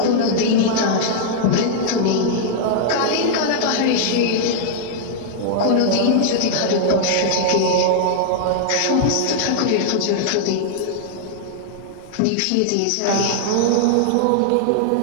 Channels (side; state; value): both; different; correlation -0.01